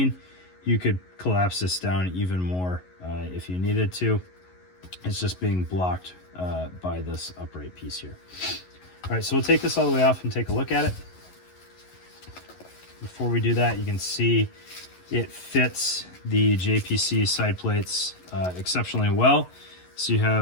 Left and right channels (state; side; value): late; right; 11 ms